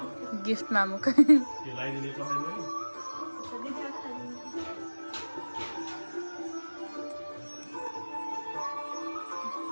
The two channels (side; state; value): both; inverted; correlation -1.00